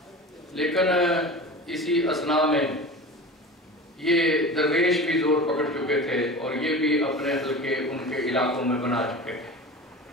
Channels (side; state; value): both; normal; correlation 0.33